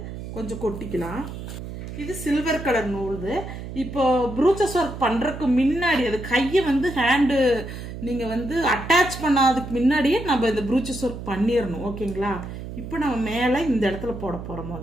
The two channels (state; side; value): noise; right; hum, 9 dB below the sound